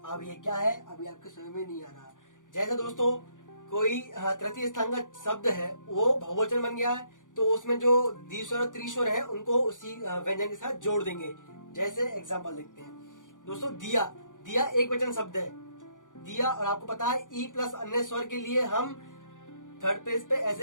अब ये क्या है, अभी आपके समझ में नहीं आ रहा। जैसे दोस्तों कोई तृतीय स्थान का शब्द है, वो बहुवचन बन गया है, तो उसमें जो द्विस्वर और त्रिस्वर है उनको उसी व्यंजन के साथ जोड़ देंगे। जैसे एग्जांपल देखते हैं दोस्तों, दिया, दिया एक वचन शब्द है, दिया, और आपको पता है ई प्लस अन्य स्वर के लिए हम थर्ड पेज पे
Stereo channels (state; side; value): late; right; 0.87 ms